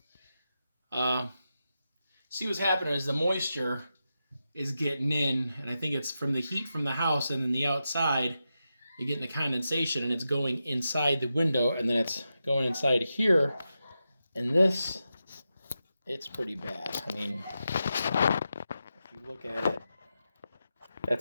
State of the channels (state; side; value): inverted; both; correlation -0.89